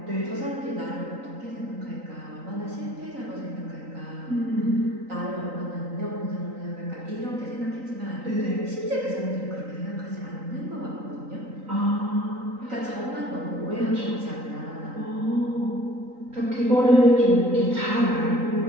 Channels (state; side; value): late; left; 3.9 ms